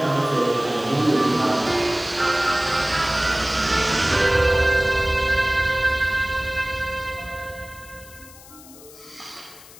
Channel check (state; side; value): noise; left; hiss, 20 dB below the sound